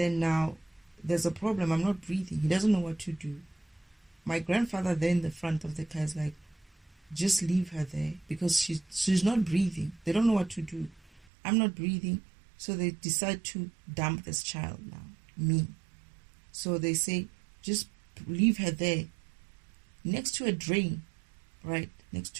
now there's a problem. I'm not breathing. He doesn't know what to do. My grandfather there in the front of the car is like, just leave her there because she's not breathing. They don't know what to do. I'm not breathing. So they decide to dump this child now, me. So they say, just leave her there next to a drain, right? Next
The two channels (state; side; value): drops out; left; at 11.2 s